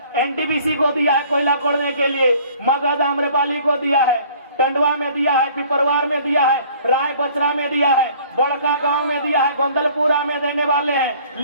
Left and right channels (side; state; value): both; inverted; correlation -0.53